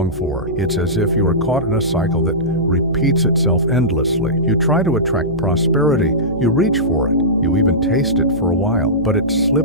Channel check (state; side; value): noise; right; hum, 13 dB below the sound